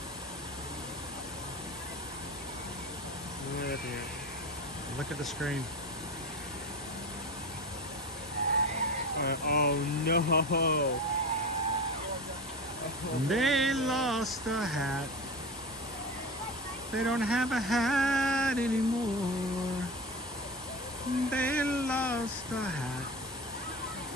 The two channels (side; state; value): both; normal; correlation 0.27